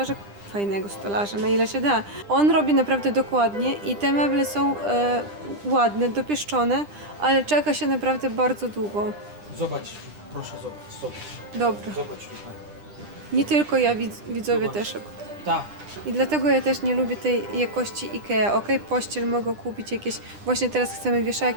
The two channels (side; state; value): left; late; 9.9 ms